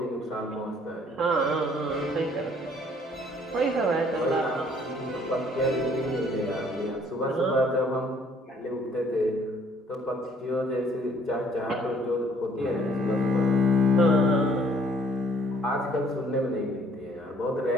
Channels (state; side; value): normal; both; correlation 0.60